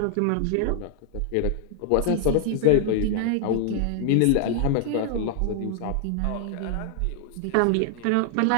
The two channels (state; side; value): different; both; correlation 0.00